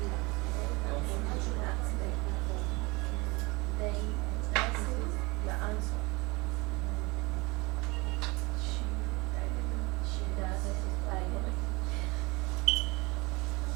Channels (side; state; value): left; quieter; 25.1 dB